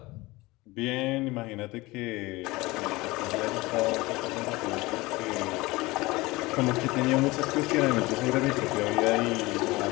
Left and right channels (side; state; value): right; quieter; 21.4 dB